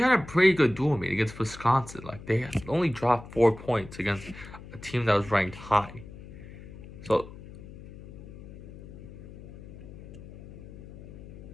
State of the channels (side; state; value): left; noise; hum, 16 dB below the sound